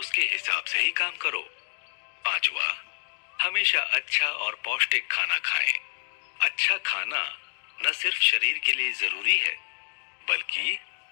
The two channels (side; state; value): right; silent; digital silence